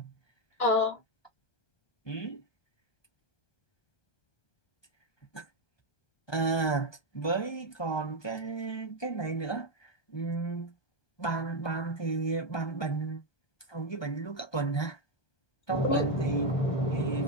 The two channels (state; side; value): late; right; 1.2 ms